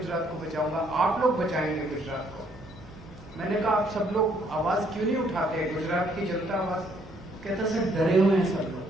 को बचाऊंगा, आप लोग बचाएंगे गुजरात को। मैंने कहा आप सब लोग आवाज क्यों नहीं उठाते, गुजरात की जनता आवाज। कहता सर, डरे हुए हैं सब लोग,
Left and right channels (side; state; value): both; normal; correlation 0.67